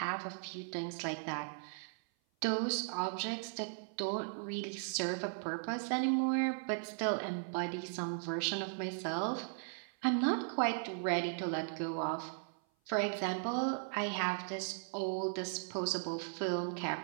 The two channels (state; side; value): silent; left; 53 dB below the other